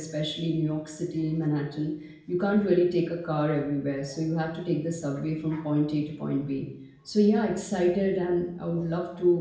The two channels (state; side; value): identical; both; correlation 1.00